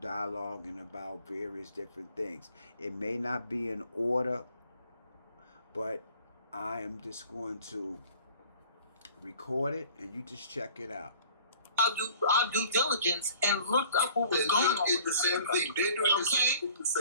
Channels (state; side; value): inverted; both; correlation -0.50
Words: about various different things. It may not be in order, but I am just going to record it and you just check it out. I'll do our due diligence and look up what was going on. It's the same thing. They're doing the same thing to